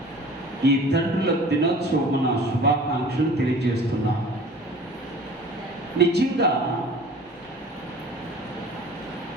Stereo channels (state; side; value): normal; both; correlation 0.45